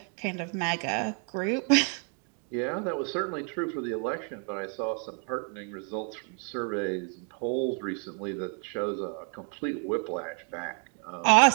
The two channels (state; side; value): quieter; left; 35.3 dB